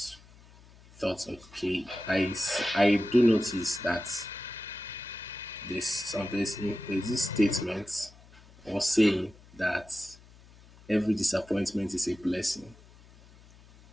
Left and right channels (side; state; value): left; noise; hum, 24 dB below the sound